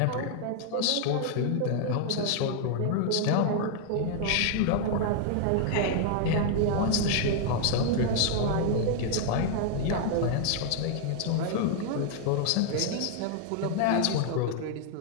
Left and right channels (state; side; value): different; both; correlation 0.00